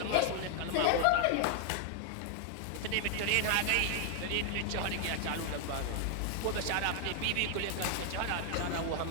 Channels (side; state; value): both; different; correlation 0.00